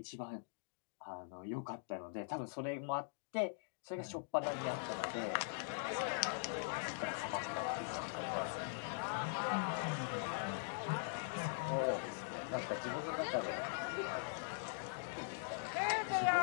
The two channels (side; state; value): right; silent; digital silence